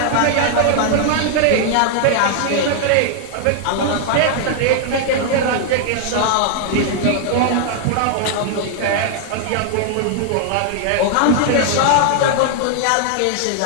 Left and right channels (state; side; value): different; both; correlation 0.00